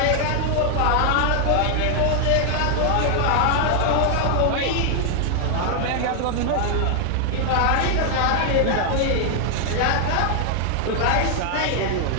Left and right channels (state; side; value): different; both; correlation 0.00